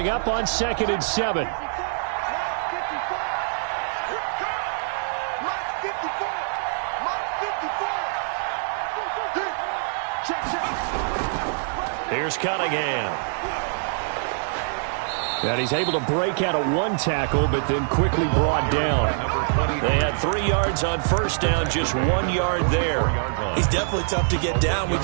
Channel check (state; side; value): silent; left; digital silence